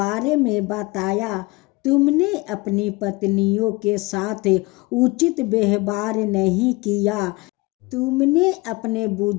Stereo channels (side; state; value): right; quieter; 23.8 dB